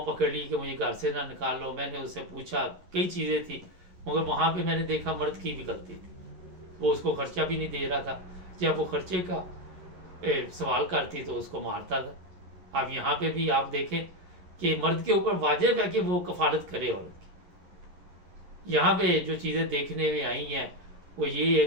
پکڑ لی کہ مجھے گھر سے نہ نکال لو. میں نے اس سے پوچھا، کئی چیزیں تھی، مگر وہاں پہ میں نے دیکھا مرد کی بھی غلطی تھی. وہ اس کو خرچہ بھی نہیں دے رہا تھا. جب وہ خرچے کا سوال کرتی تو اس کو مارتا تھا. اب یہاں پہ بھی آپ دیکھیں کہ مرد کے اوپر واجب ہے کہ وہ کفالت کرے عورت کی. یہاں پہ جو چیزیں دیکھنے میں آئی ہیں وہ یہ ہے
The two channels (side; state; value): left; late; 11 ms